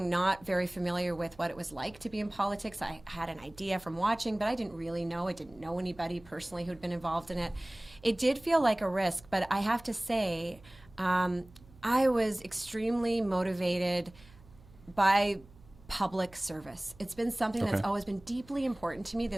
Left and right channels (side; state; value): right; noise; hum, 24 dB below the sound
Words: not very familiar with what it was like to be in politics. I had an idea from watching, but I didn't really know. I didn't know anybody personally who'd been involved in it. It did feel like a risk, but I have to say, I was extremely motivated by public service. It's been something that's always been deeply important to me,